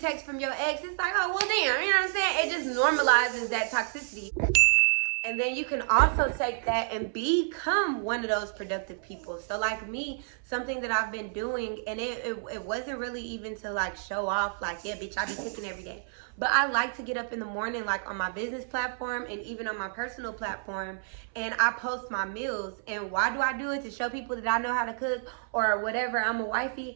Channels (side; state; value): left; silent; 58 dB below the other